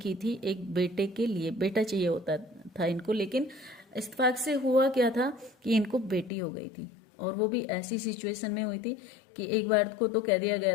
थी, एक बेटे के लिए बेटा चाहिए होता था इनको, लेकिन इत्तेफाक से हुआ क्या था कि इनको बेटी हो गई थी, और वो भी ऐसी सिचुएशन में हुई थी कि एक बार को तो कह दिया गया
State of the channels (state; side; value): drops out; right; at 6.3 s